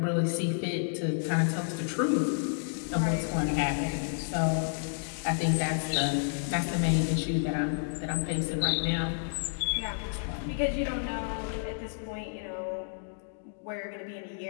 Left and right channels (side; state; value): right; silent; digital silence